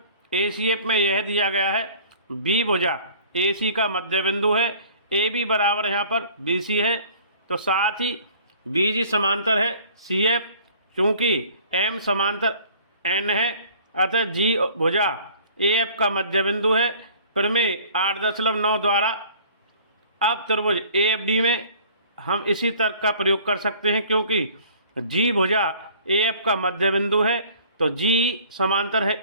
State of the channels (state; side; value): inverted; both; correlation -0.51